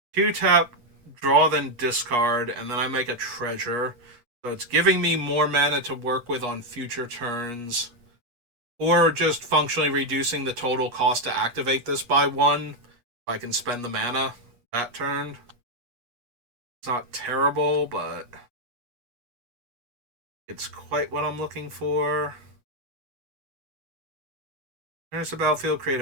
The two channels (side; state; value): left; late; 8.3 ms